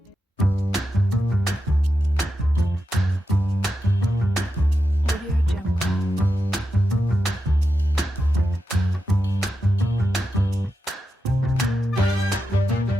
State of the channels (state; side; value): normal; both; correlation 0.88